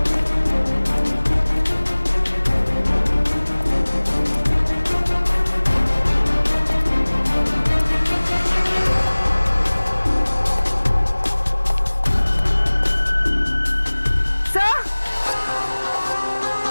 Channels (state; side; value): inverted; both; correlation -1.00